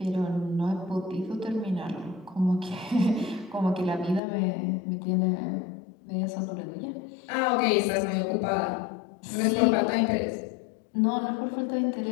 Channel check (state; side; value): drops out; right; at 4.2 s